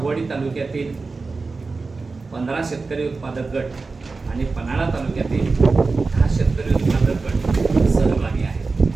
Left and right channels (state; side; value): quieter; left; 4.0 dB